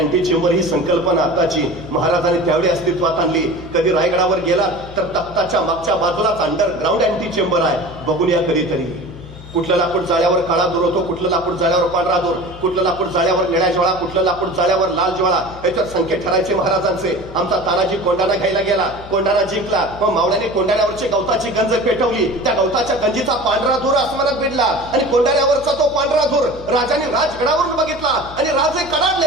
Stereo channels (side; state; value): left; noise; hum, 17 dB below the sound